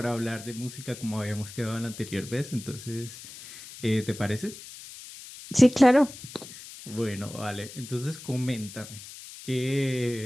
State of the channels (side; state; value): left; noise; hiss, 15 dB below the sound